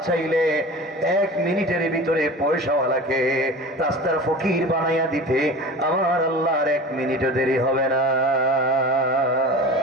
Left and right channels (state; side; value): normal; both; correlation 0.35